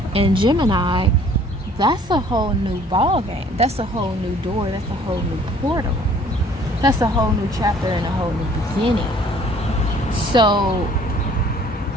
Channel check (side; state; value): both; normal; correlation 0.56